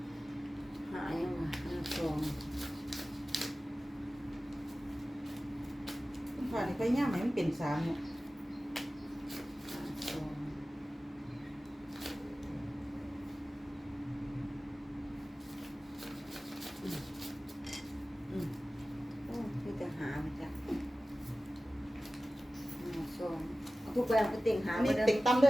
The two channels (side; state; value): both; normal; correlation 0.96